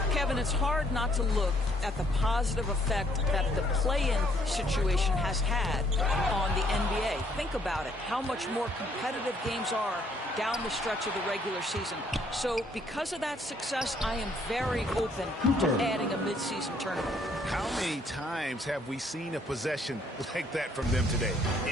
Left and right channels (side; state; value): both; normal; correlation 0.66